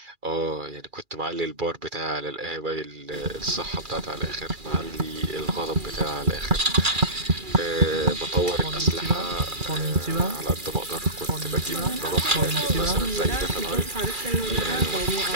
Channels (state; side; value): late; left; 2.4 ms